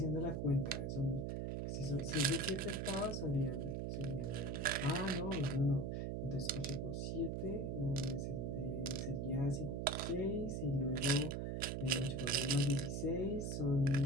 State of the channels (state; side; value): noise; right; hum, 1 dB below the sound